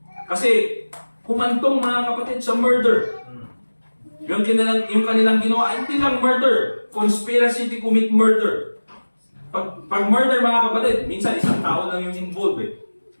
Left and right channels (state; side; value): inverted; both; correlation -1.00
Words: Kasi humantong mga kapatid sa murder. Yung kanilang ginawa, hindi lang murder. Conspiracy to commit murder. Pag murder mga kapatid, minsan isang tao lang yung involved eh.